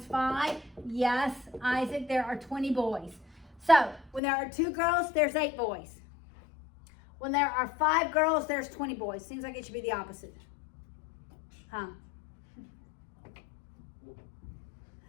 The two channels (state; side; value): drops out; right; at 4.2 s